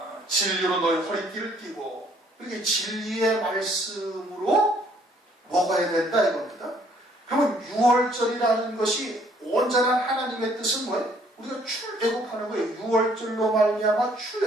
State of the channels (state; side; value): normal; both; correlation 0.63